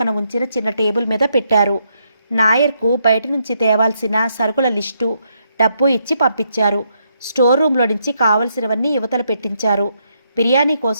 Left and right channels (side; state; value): both; inverted; correlation -0.77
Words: ఉంచిన చిన్న టేబుల్ మీద పెట్టారు. నాయర్కు బయట నుంచి తేవాల్సిన సరుకుల లిస్టు, డబ్బు ఇచ్చి పంపించారు. స్టోర్ రూమ్లో నుంచి కావలసినవన్నీ యువతలు పెట్టించారు. బిర్యానీ